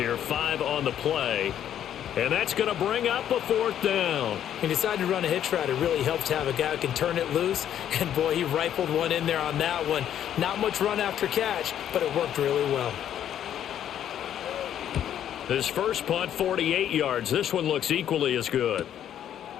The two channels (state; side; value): quieter; right; 10.3 dB